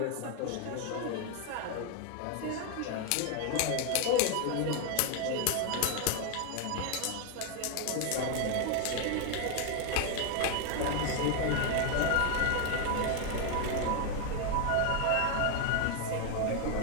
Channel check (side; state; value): both; different; correlation 0.01